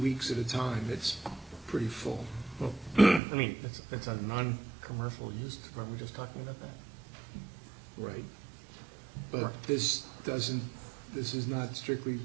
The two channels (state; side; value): drops out; left; at 3.2 s